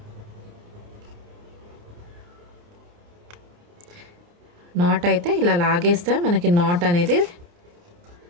నాట్ అయితే ఇలా లాగేస్తే మనకి నాట్ అనేది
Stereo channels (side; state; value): left; late; 29 ms